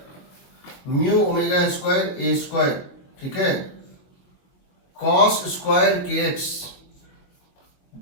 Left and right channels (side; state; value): right; late; 21 ms